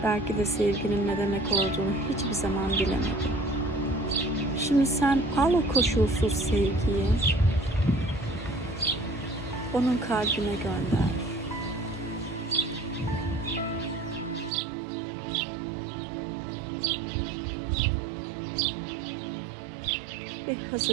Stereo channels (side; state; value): left; drops out; at 14.5 s